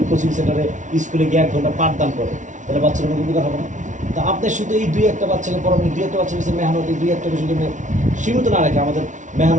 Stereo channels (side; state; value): left; late; 0.36 ms